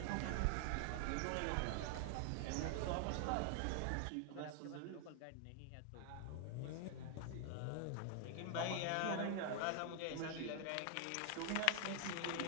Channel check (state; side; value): different; both; correlation 0.00